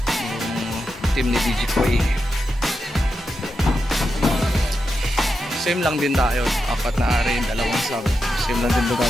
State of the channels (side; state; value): both; normal; correlation 0.87